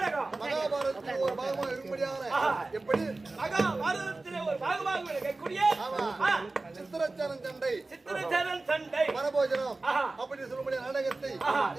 மகாபாரதத்தில் ஒரு பாகமாக இருக்கும்படியாக எப்படி மகாபாரதத்திலே ஒரு பாகமாக இருக்கக்கூடிய சித்திரச்சரன் சண்டை மனபோஜனம் அப்படி சொல்லக்கூடிய நாடகத்தை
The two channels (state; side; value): quieter; left; 3.3 dB